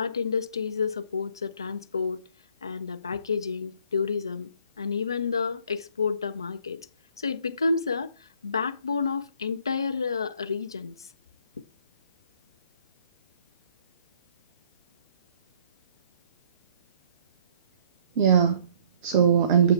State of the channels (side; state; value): both; inverted; correlation -0.61